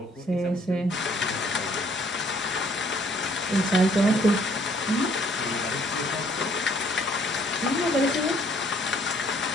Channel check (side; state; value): both; normal; correlation 0.63